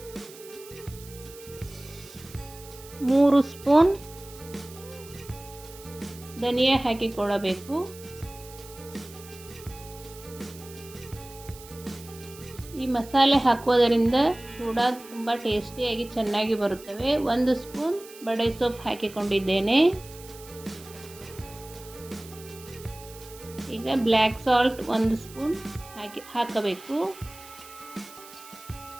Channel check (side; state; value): right; noise; hiss, 18 dB below the sound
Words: ಮೂರು ಸ್ಪೂನ್ ಧನಿಯಾ ಹಾಕಿಕೊಳ್ಳಬೇಕು. ಈ ಮಸಾಲೆ ಹಾಕುವುದರಿಂದ ಚೂಡ ತುಂಬ ಟೇಸ್ಟಿಯಾಗಿ ಚೆನ್ನಾಗಿ ಬರುತ್ತವೆ. ಒಂದು ಸ್ಪೂನ್ ಬಡೆ ಸೊಪ್ಪು ಹಾಕಿಕೊಂಡಿದ್ದೇನೆ. ಈಗ ಬ್ಲ್ಯಾಕ್ ಸಾಲ್ಟ್ ಒಂದು ಸ್ಪೂನ್ ಹಾಕಬೇಕು.